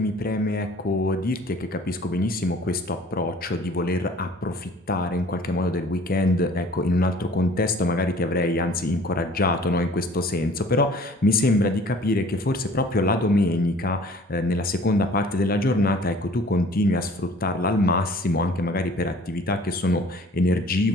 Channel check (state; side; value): normal; both; correlation 0.51